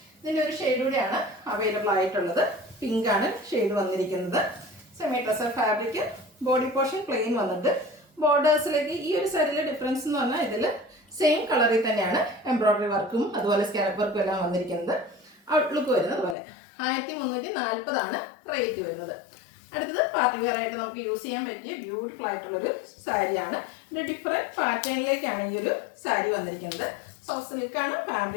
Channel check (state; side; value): drops out; right; at 16.4 s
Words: ഇതിൻ്റെ ഒരു ഷെയ്ഡ് കൂടിയാണ് അവൈലബിൾ ആയിട്ടുള്ളത്. പിങ്കാണ് ഷെയ്ഡ് വന്നിരിക്കുന്നത്. Semi tussar fabric, body portion plain വന്നിട്ട് ബോർഡേഴ്സിലേക്ക് ഈ ഒരു സാരിയിലെ ഡിഫറൻസ് എന്ന് പറഞ്ഞാൽ ഇതിൽ സെയിം കളറിൽ തന്നെയാണ് എംബ്രോയ്ഡറി വർക്കും അതുപോലെ സ്കാലപ്പ് വർക്കും എല്ലാം വന്നിരിക്കുന്നത്. ഔട്ട്ലുക്ക് വരുന്നത് അതുപോലെ. 1340 ആണ് റേറ്റ് വരുന്നത്. അടുത്തത് പാർട്ടി വെയർ ആയിട്ട് നമുക്ക് യൂസ് ചെയ്യാൻ പറ്റിയ ബ്യൂട്ടിഫുൾ ആയിട്ടുള്ളൊരു സാരിയാണ്. ഒരു ഡിഫറെൻറ്റ് പാറ്റേണിലേക്കാണ് ഈ ഒരു സാരി വന്നിരിക്കുന്നത്. സോഫ്റ്റ് സിൽക്കാണ്